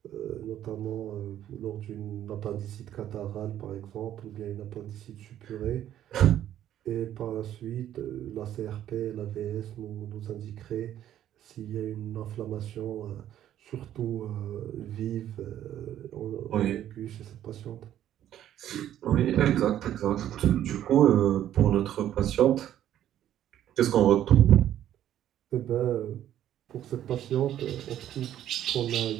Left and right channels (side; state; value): left; quieter; 11.5 dB